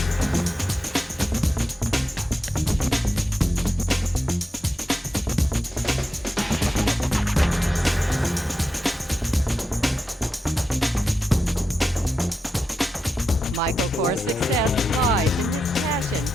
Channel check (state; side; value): normal; both; correlation 0.89